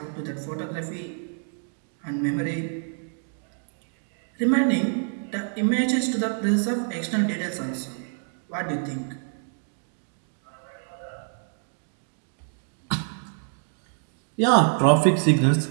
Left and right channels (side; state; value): left; silent; 60 dB below the other